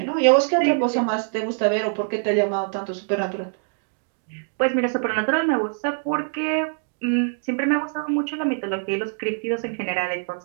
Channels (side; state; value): left; silent; digital silence